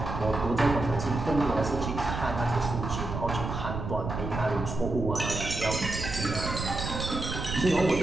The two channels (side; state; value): right; noise; rumble, 5 dB below the sound